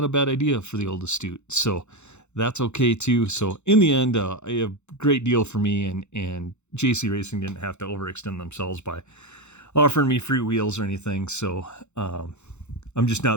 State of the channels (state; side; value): late; right; 0.82 ms